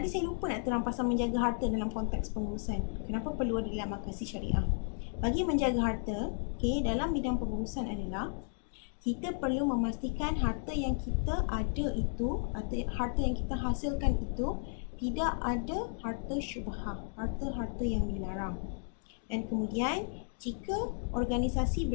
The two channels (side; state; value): right; silent; 55 dB below the other